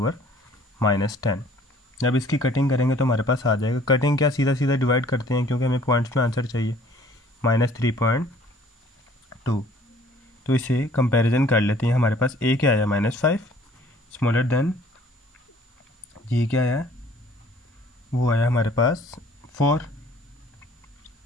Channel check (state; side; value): normal; both; correlation 0.55